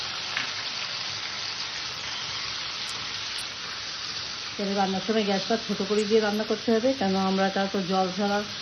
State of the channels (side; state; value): both; identical; correlation 1.00